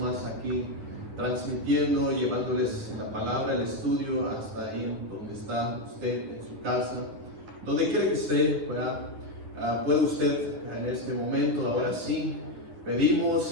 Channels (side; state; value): left; late; 9.9 ms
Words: aquí transmitiendo, llevándoles la palabra, el estudio hasta ahí donde está usted, en su casa, donde quiera que esté, ¿verdad? Puede usted en este momento, ahora sí,